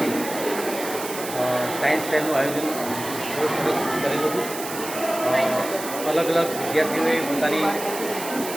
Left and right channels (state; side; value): noise; right; hiss, 9 dB below the sound